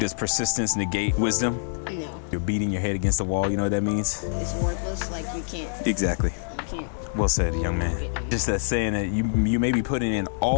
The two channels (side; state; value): right; silent; digital silence